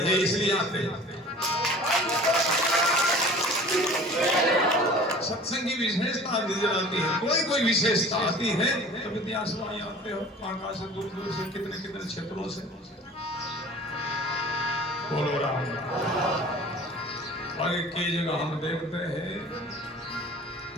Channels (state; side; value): normal; both; correlation 0.44